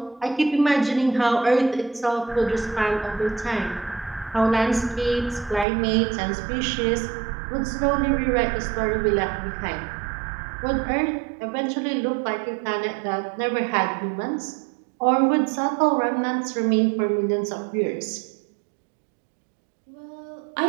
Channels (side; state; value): left; drops out; at 5.7 s